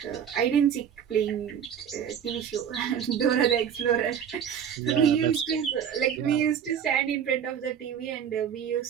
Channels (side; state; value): left; quieter; 8.3 dB